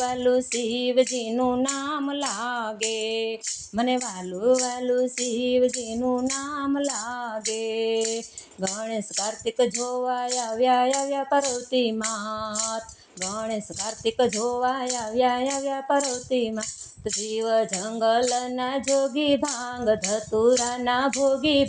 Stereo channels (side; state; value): both; identical; correlation 1.00